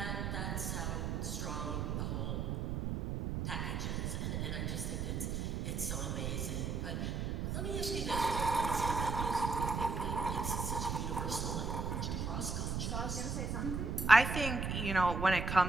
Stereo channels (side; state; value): right; noise; rumble, 1 dB below the sound